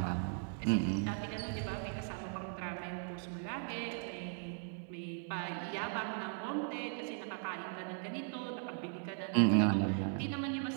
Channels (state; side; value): silent; left; 52 dB below the other